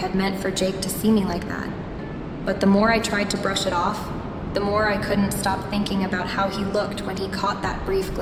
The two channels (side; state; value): both; identical; correlation 1.00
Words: meant for Jake to see me like that. But the more I tried to brush it off, the more I couldn't stop thinking about how he looked when he caught that brief